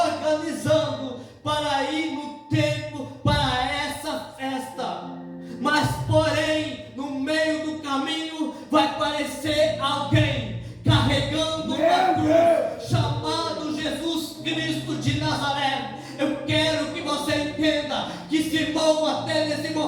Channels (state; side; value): identical; both; correlation 1.00